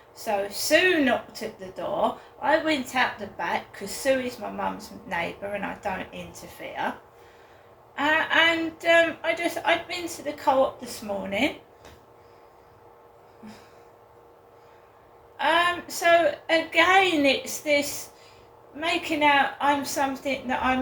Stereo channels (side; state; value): both; identical; correlation 1.00